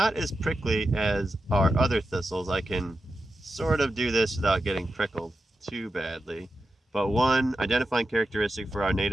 as prickly as our other thistles. I can sort of do this without getting prickled too badly. But one identifying characteristic for our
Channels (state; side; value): normal; both; correlation 0.90